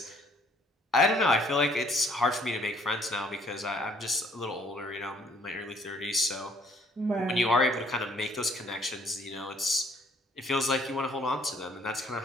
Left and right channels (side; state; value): both; normal; correlation 0.61